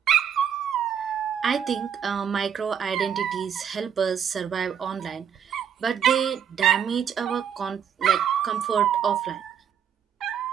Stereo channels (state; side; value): quieter; left; 8.3 dB